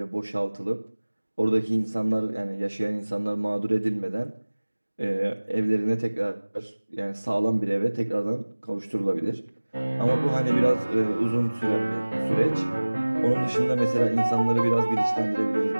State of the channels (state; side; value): inverted; both; correlation -1.00